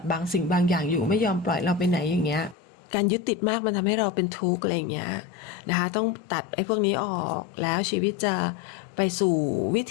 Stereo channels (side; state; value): right; drops out; at 2.6 s